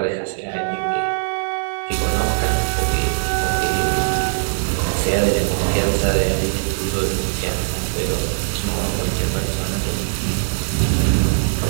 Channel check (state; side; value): silent; left; digital silence